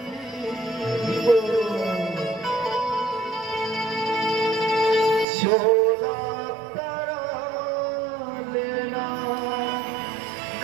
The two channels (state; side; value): drops out; left; at 5.2 s